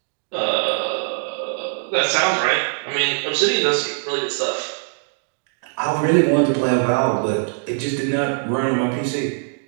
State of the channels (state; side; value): silent; left; 65 dB below the other